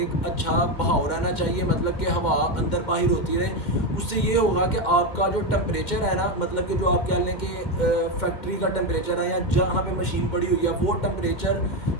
اچھا بہاؤ رہنا چاہیے، مطلب کہ ہوا اندر باہر ہوتی رہے. اس سے یہ ہوگا کہ آپ کا جو ٹمپریچر ہے نا، مطلب کہ جو آپ کہہ لیں کہ فیکٹری کا ٹمپریچر ہے یا جہاں پہ مشین پڑی ہوئی ہے، وہ ٹمپریچر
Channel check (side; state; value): right; late; 2.1 ms